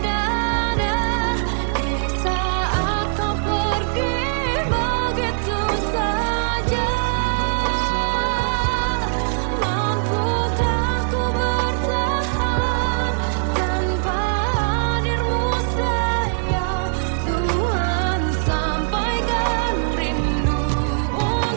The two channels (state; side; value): silent; left; digital silence